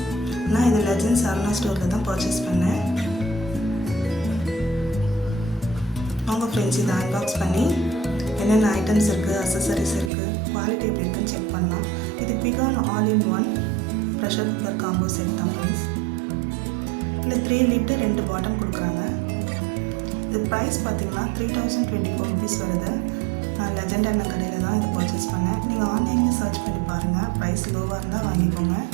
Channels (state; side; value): drops out; left; at 10.1 s